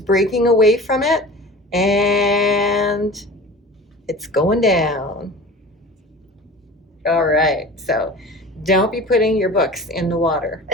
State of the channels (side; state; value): both; normal; correlation 0.38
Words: away from it and it's going down. All right, so don't be putting your books in the water.